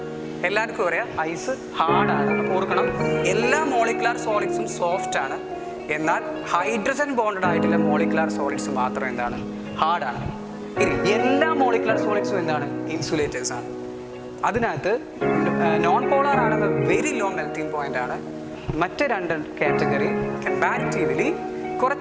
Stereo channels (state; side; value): identical; both; correlation 1.00